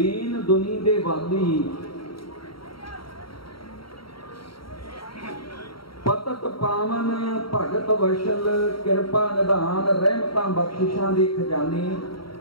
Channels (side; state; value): right; late; 0.74 ms